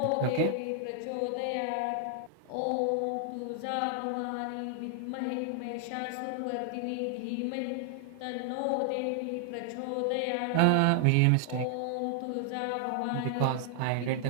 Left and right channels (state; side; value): different; both; correlation 0.00